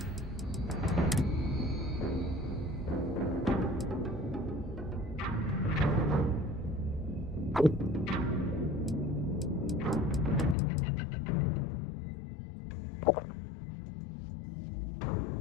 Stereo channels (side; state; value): right; drops out; at 10.6 s